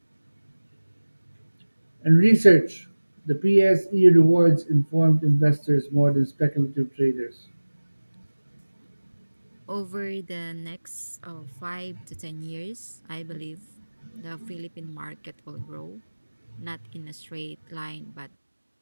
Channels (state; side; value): inverted; both; correlation -1.00